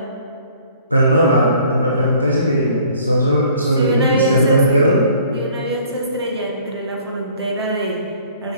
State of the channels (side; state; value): both; inverted; correlation -0.55